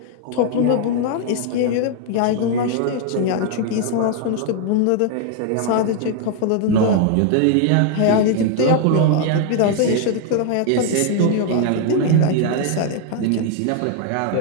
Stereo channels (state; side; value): different; both; correlation 0.00